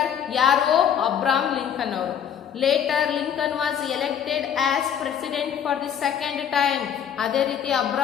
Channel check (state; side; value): quieter; right; 8.7 dB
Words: ಯಾರು? ಅಬ್ರಾಹಂ ಲಿಂಕನ್ ಅವರು. Later, Lincoln was elected as president for the second time. ಅದೇ ರೀತಿ